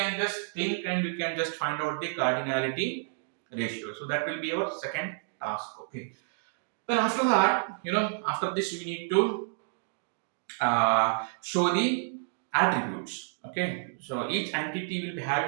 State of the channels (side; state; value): left; silent; digital silence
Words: just think and we can just find out the cardinality ratio. So that will be our second task. Okay. Then after that, after this we need to show the attributes. Okay, so each entity will be